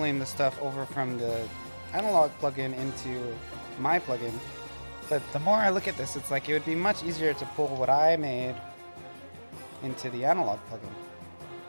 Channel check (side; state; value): both; inverted; correlation -1.00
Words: the stuff over from the analog plugin into my plugin, but the more I look at this, it's like it would be much easier to pull what I made into the analog plugin,